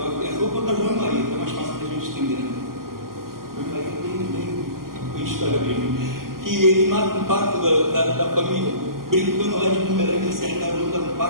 vou contar João e Maria, que é mais fácil da gente entender, né? João e Maria tem história mesmo. Que ele mata um pato da família. brincando lá de bumerangue, acertaram no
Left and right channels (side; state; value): left; late; 0.92 ms